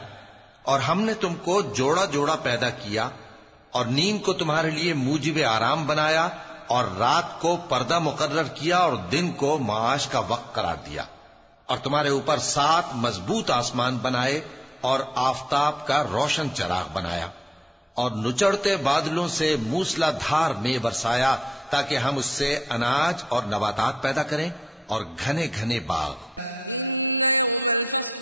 और हमने तुमको जोड़ा जोड़ा पैदा किया और नींद को तुम्हारे लिए मूजिब आराम बनाया और रात को पर्दा मुकर्रर किया और दिन को माश का वक्त करार दिया और तुम्हारे ऊपर 7 मजबूत आसमान बनाए और आफताब का रोशन चराग बनाया और नुचड़ते बादलों से मूसलाधार में बरसाया ताकि हम उससे अनाज और नबातात पैदा करें और घने घने बाग। इन्न यौमल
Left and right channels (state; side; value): normal; both; correlation 0.86